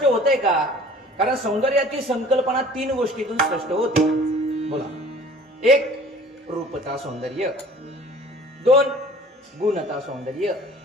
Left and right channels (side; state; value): both; normal; correlation 0.48